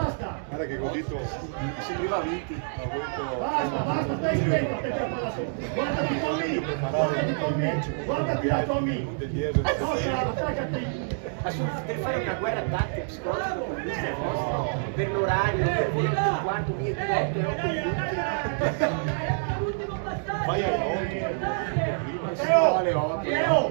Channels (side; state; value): left; silent; digital silence